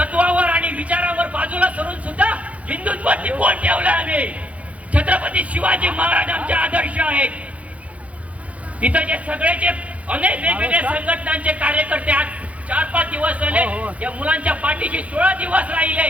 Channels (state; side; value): late; left; 0.066 ms